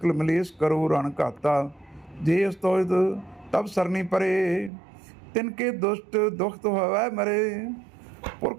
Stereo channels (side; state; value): left; drops out; at 4.7 s